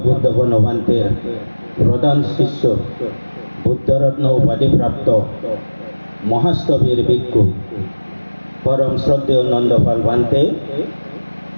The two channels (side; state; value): both; inverted; correlation -1.00